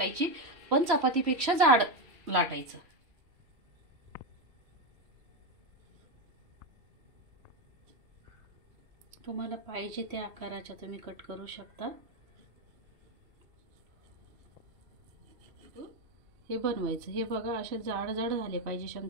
पण चपातीपेक्षा जाड लाटायचं। तुम्हाला पाहिजे त्या आकाराच्या तुम्ही कट करू शकता। हे बनवायचं। हे बघा असे जाड जाड झाले पाहिजे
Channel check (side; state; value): left; late; 3.1 ms